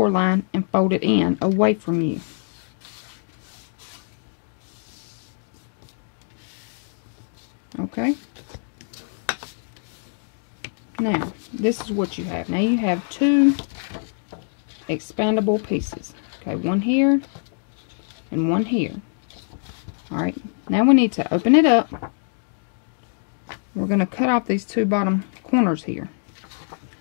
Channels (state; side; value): silent; right; digital silence